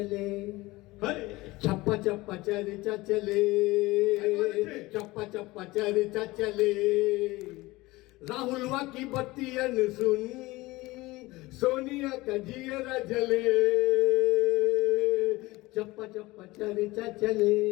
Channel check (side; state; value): right; quieter; 20.5 dB